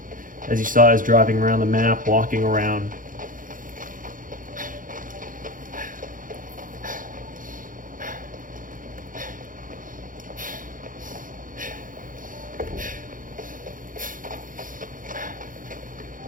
As you saw, I was driving around the map, walking around.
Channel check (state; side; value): late; left; 0.39 ms